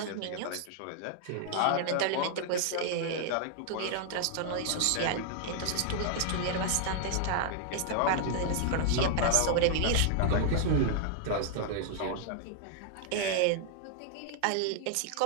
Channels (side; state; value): both; different; correlation 0.00